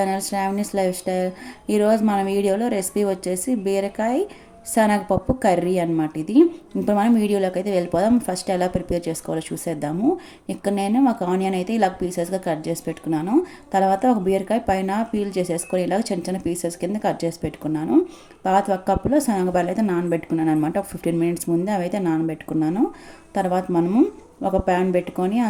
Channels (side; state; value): both; identical; correlation 1.00